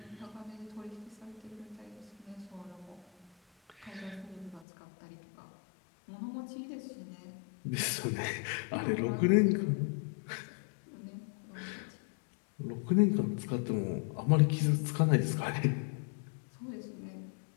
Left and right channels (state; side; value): drops out; right; at 4.7 s